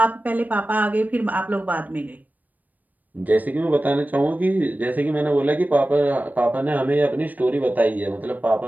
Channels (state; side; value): late; left; 0.083 ms